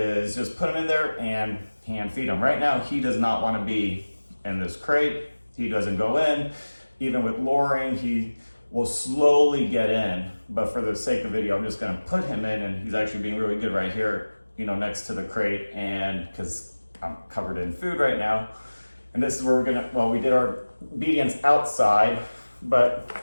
just put him in there and hand feed him. Right now, he does not want to be in this crate. He doesn't go in. Even with luring, he will slowly get in. But for the sake of video, I'm just going to put him in, and he's actually being really good right here, next to the crate, and because I'm covered in food right now. And this is where we did our obedience outside, but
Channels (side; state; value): both; inverted; correlation -1.00